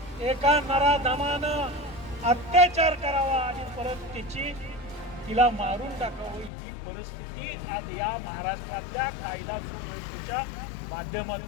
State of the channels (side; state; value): right; drops out; at 6.5 s